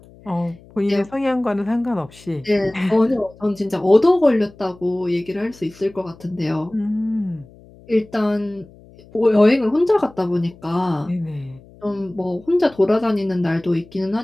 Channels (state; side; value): noise; left; hum, 24 dB below the sound